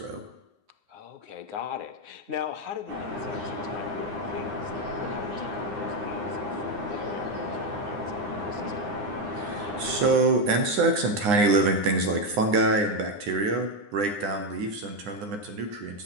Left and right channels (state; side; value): late; left; 9.8 ms